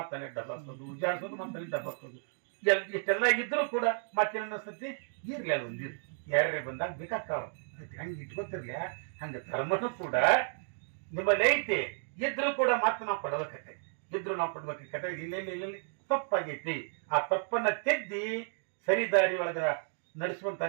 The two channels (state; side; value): silent; left; digital silence